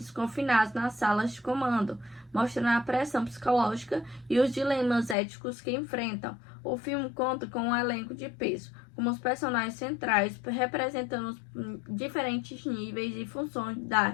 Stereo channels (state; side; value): drops out; right; at 5.2 s